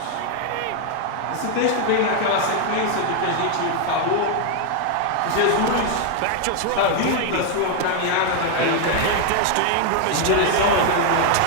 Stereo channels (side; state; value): both; different; correlation 0.00